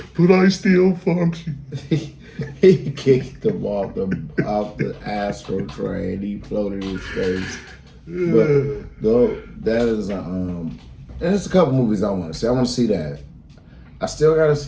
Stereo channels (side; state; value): both; identical; correlation 1.00